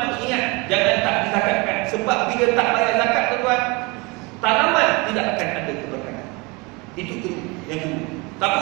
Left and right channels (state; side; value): quieter; left; 26.2 dB